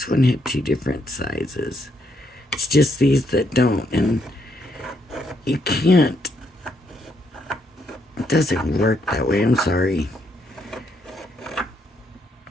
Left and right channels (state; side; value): normal; both; correlation 0.74